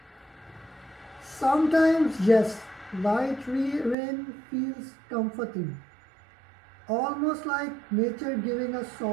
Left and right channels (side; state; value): left; drops out; at 4.0 s